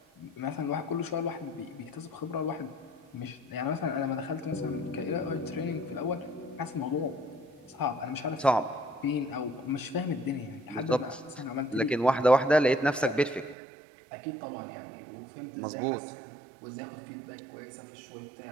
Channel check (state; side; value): drops out; left; at 13.6 s